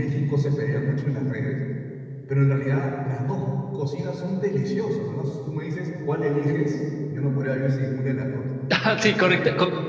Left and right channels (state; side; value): identical; both; correlation 1.00